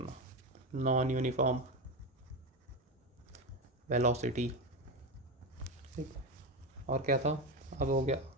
नॉन यूनिफॉर्म वेलोसिटी। ठीक, और क्या था, अब हो गया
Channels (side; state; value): both; normal; correlation 0.16